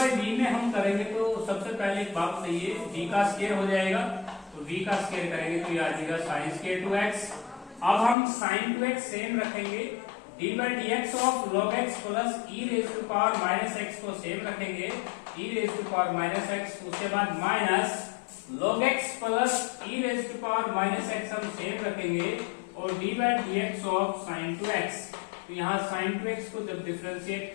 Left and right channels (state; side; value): drops out; right; at 8.2 s